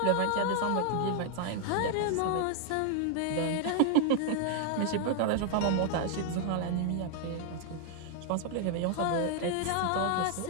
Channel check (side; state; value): both; different; correlation 0.00